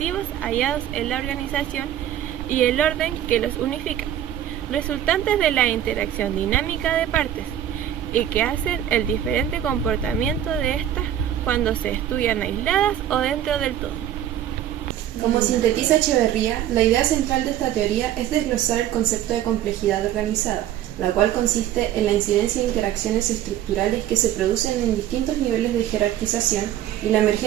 hallados en la organización y el orden que los unifican, resultantes de la interacción dinámica de partes, y que hacen el diferente comportamiento de estas cuando se estudian aisladas o dentro del todo. Como sintetiza Echeverría, la idea central de esta teoría es desglosar el concepto de complejidad organizada, la cual consiste en la incidencia de interacciones estructurales que se producen en distintos niveles de jerarquización y la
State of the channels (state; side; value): quieter; left; 11.4 dB